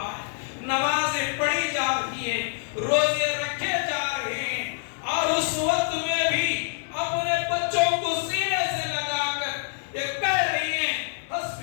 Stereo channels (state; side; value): silent; right; digital silence